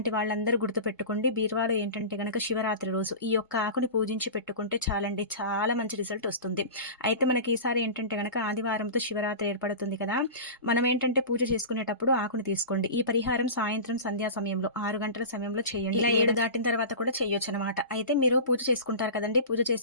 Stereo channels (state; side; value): inverted; both; correlation -0.31